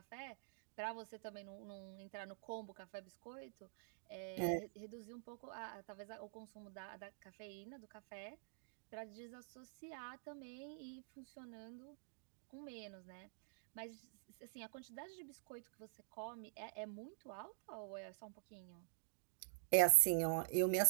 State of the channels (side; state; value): left; silent; digital silence